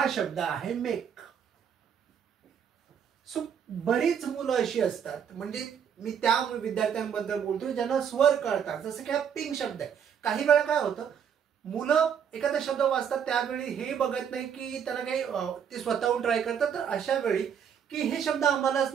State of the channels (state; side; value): quieter; left; 8.0 dB